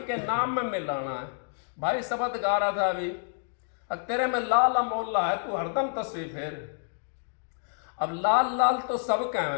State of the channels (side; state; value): right; silent; digital silence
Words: के नाम में मिलाना है। भाई शब्द गा रहा था अभी, तेरे में लाल अमोला है तू हरदम तस्वीर फेर। अब लाल लाल तो सब